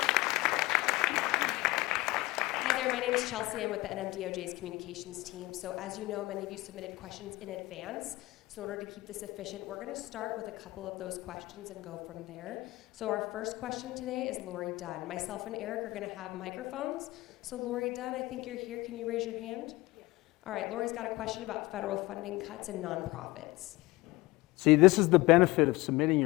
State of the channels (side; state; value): right; quieter; 20.5 dB